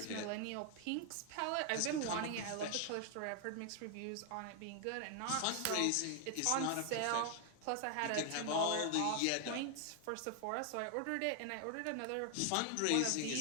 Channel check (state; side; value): different; both; correlation 0.00